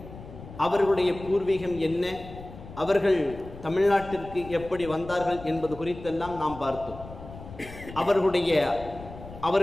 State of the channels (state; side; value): noise; left; rumble, 15 dB below the sound